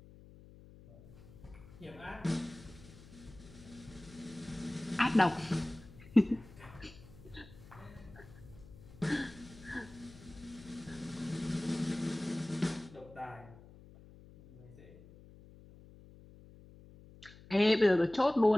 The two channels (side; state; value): left; noise; hum, 20 dB below the sound